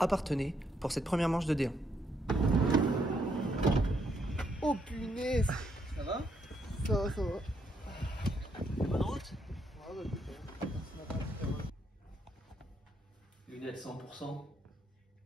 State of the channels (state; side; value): normal; both; correlation 0.75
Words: Parthenay pour cette première manche de D1. Oh punaise! Ça va? Ça va, ça va. Bonne route? Ouais, bah, écoute, Lunettes 100%.